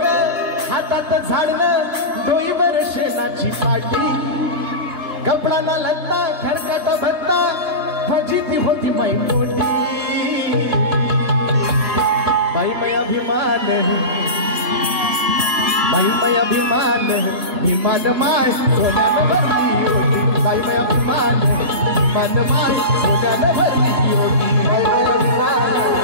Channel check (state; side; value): late; left; 3.3 ms